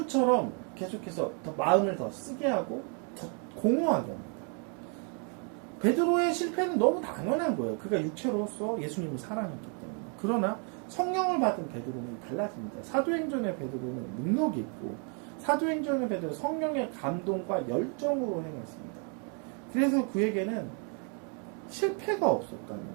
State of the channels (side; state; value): left; quieter; 39.7 dB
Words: 계속해서 더 마음을 더 쓰게 하고 더 공허하게 합니다. 베드로의 실패는 너무 당연한 거예요. 그가 육체로서 예수님을 사랑했기 때문에. 그러나 성령을 받은 베드로는 달라집니다. 사도행전의 베드로는 능력이 있고 사도행전의 베드로는 성령의 감동과 열정으로 행했습니다. 그래서 그에게는 실패가 없었다는